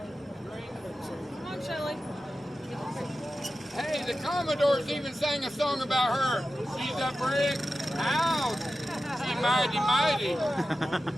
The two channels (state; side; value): normal; both; correlation 0.93